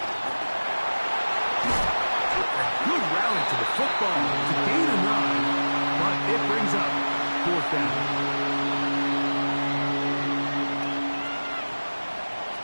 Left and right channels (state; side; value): inverted; both; correlation -1.00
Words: A good rally to the football to gain a 9. But it brings up fourth down.